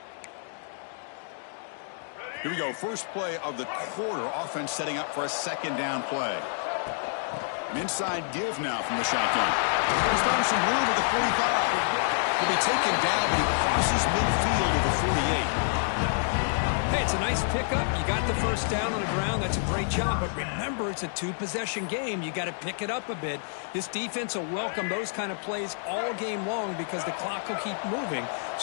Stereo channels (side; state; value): right; silent; digital silence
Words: Here we go. First play of the quarter. Offense setting up for a second down play. An inside give now from the shotgun. He's found some room at the 45. He'll be taken down, but he crosses midfield to the 48. Hey, it's a nice pickup. You got the first down on the ground. That's a great job. But remember, it's a two-possession game. You got to pick it up a bit. This defense will welcome those kind of plays all game long because the clock will keep moving.